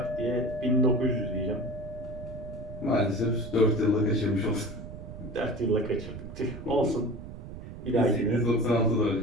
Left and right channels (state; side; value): noise; right; rumble, 11 dB below the sound